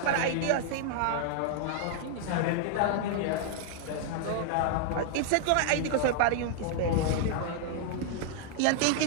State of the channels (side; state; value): both; different; correlation 0.00